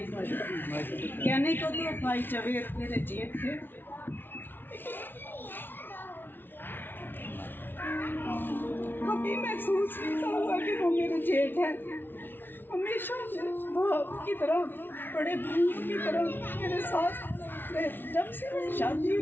की। कहने को तो भाई जवेद मेरे जेठ थे, कभी महसूस नहीं हुआ कि वो मेरे जेठ हैं। हमेशा भाव की तरह, बड़े भाइयों की तरह मेरे साथ रहे। जब से मेरी शादी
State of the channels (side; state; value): right; late; 0.099 ms